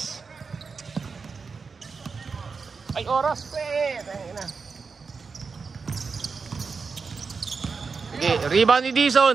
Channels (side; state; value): left; quieter; 5.0 dB